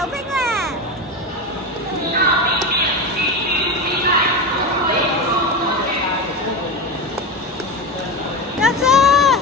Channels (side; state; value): both; normal; correlation 0.20